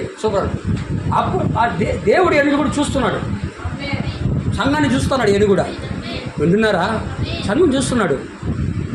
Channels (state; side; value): identical; both; correlation 1.00